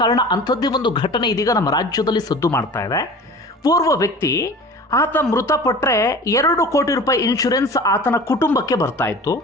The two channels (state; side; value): normal; both; correlation 0.39